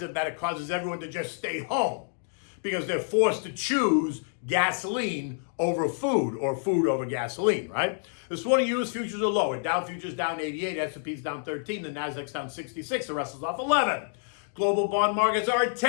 that it causes everyone to just stay home because they're forced to choose gasoline over food or food over gasoline, right? This morning, U.S. futures are lower. Dow futures down 88, S&P's down 13, the Nasdaq's down 66, the Russell's off 11. Global bond markets are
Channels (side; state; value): right; silent; digital silence